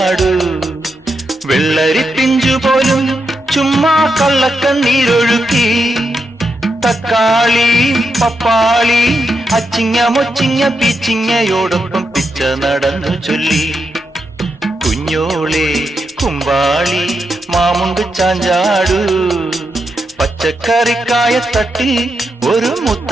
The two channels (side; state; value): both; normal; correlation 0.84